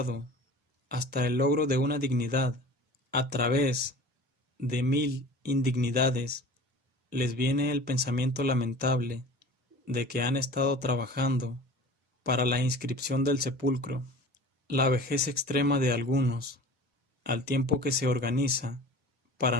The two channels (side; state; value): both; normal; correlation 0.40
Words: hasta el logro de una dignidad, a través de 1000 indignidades, les viene el pensamiento lamentable de que han estado trabajando para la inscripción del sepulcro. La vejez extrema de algunos, al tiempo que se organiza